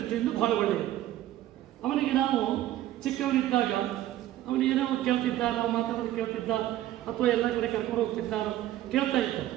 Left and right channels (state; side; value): quieter; left; 13.8 dB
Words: ಭಾಳ ಒಳ್ಳೆಯದು. ಅವನಿಗೆ ನಾವು ಚಿಕ್ಕವನಿದ್ದಾಗ ಅವನು ಏನೋ ಕೇಳ್ತಿದ್ದ, ನಾವು ಮಾತಾಡೋದು ಕೇಳ್ತಿದ್ದ, ಅಥವಾ ಎಲ್ಲ ಕಡೆ ಕರ್ಕೊಂಡು ಹೋಗ್ತಿದ್ದಾರೋ ಕೇಳ್ತಾ ಇದ್ದ.